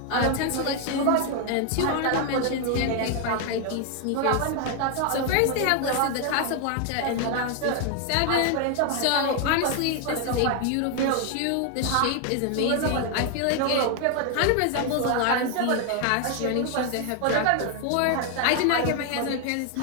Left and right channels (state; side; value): different; both; correlation 0.00